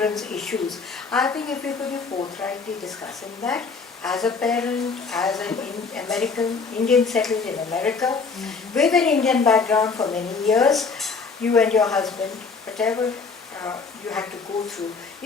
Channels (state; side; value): quieter; right; 4.7 dB